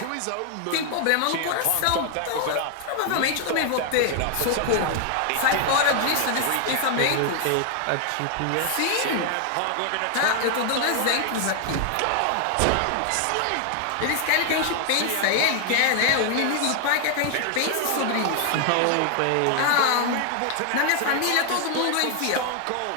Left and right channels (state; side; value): different; both; correlation 0.00